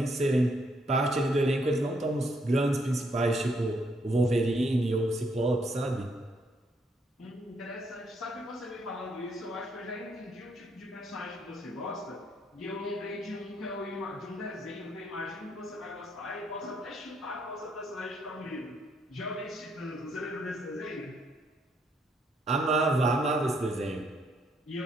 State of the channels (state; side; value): normal; both; correlation 0.72